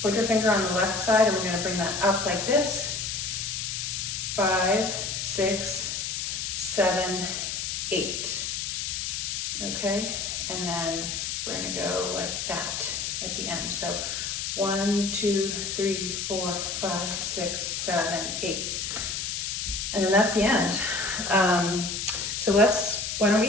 finger on the left side, and we're gonna bring that up like this. 5, 6, 7, 8. Okay, and then we're gonna go like that at the end. So 1, 2, 3, 4, 5, 6, 7, 8. And then that's the end. So why don't we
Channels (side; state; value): left; noise; hiss, 3 dB below the sound